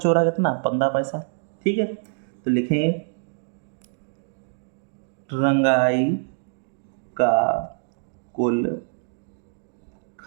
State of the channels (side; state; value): left; silent; digital silence